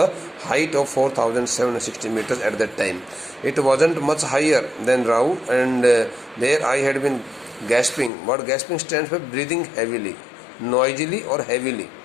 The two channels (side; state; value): right; drops out; at 8.1 s